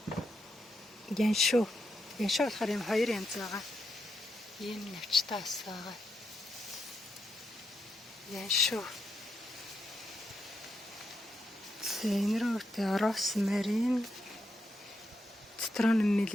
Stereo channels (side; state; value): both; normal; correlation 0.82